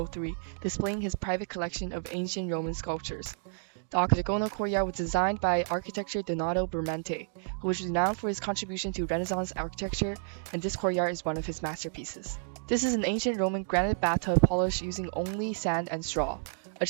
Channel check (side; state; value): left; silent; digital silence